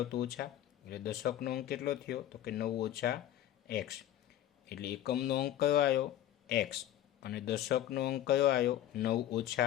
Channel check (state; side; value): quieter; right; 12.3 dB